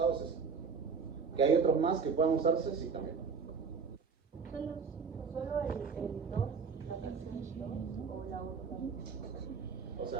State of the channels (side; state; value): left; quieter; 5.6 dB